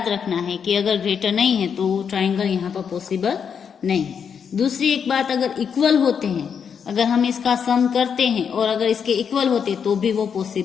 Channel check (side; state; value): right; quieter; 7.1 dB